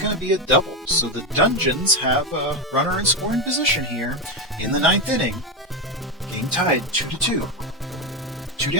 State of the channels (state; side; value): normal; both; correlation 0.12